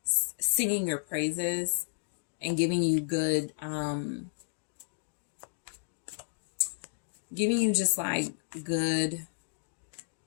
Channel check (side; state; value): right; silent; digital silence